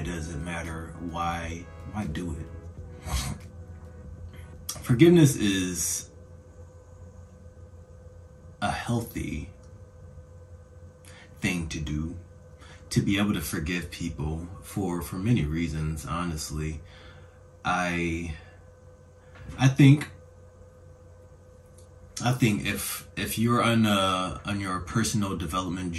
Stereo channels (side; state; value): both; identical; correlation 1.00